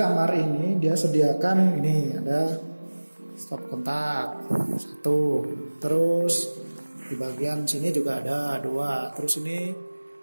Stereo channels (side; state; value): both; inverted; correlation -1.00